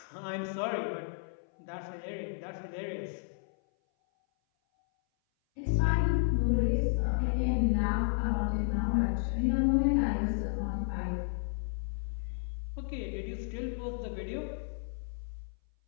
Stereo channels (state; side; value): silent; right; 56 dB below the other